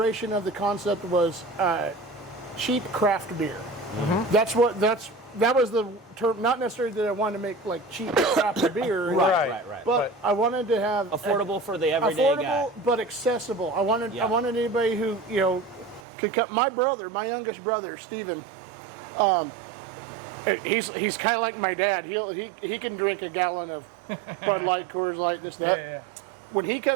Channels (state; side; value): drops out; left; at 16.0 s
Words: of the concept was cheap craft beer. Mm-hmm. That was the term. Not necessarily that I wanted to make like cheap craft beer, right. But I wanted to have affordable for the everyday guy. But accessible. I wanted anybody who could come. My youngest brother, Stephen. He's kind of like my dad. He can drink a gallon of Bud Light, Coors Light, this that. Yeah. When he